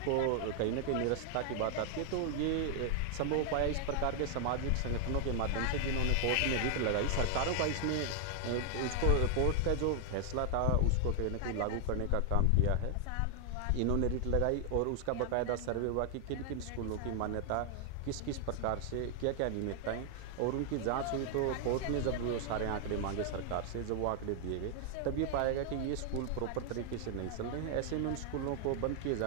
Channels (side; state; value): both; different; correlation 0.00